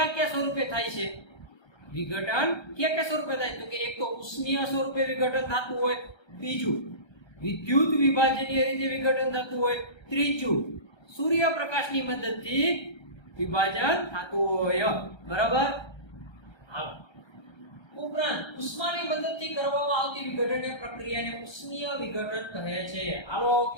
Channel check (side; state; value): right; late; 1.3 ms